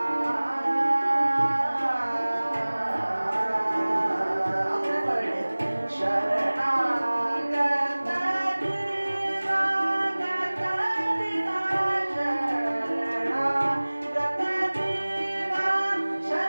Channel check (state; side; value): inverted; both; correlation -1.00